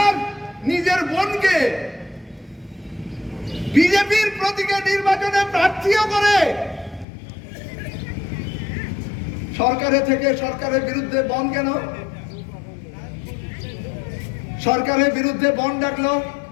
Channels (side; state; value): right; drops out; at 7.1 s